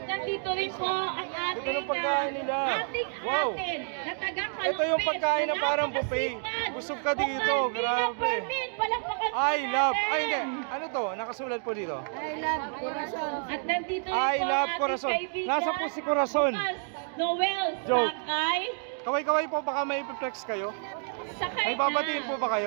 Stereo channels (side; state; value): left; silent; 55 dB below the other